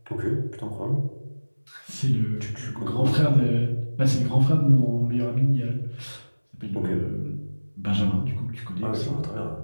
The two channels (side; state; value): both; inverted; correlation -1.00